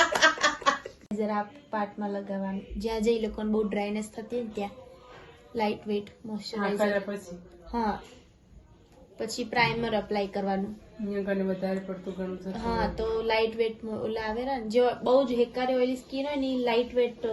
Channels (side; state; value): both; identical; correlation 1.00